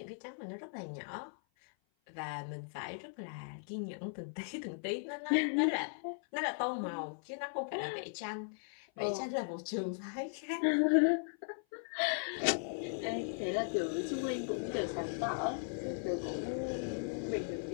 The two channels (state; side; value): silent; right; 53 dB below the other